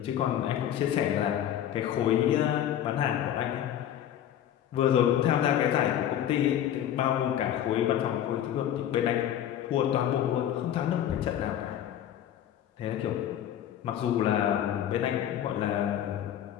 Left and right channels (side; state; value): right; quieter; 10.7 dB